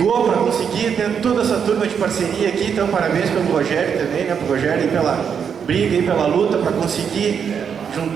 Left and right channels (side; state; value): left; quieter; 7.2 dB